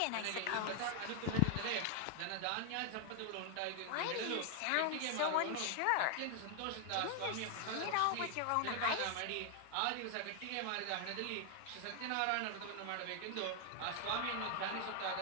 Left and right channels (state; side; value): different; both; correlation 0.00